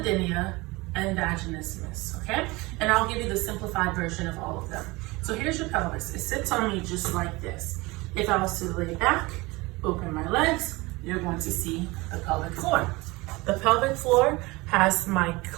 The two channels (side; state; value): left; quieter; 22.9 dB